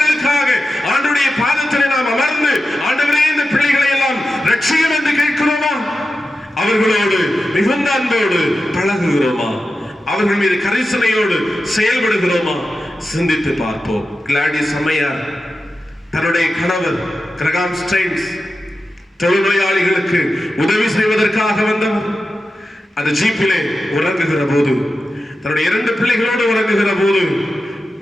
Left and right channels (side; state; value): both; normal; correlation 0.92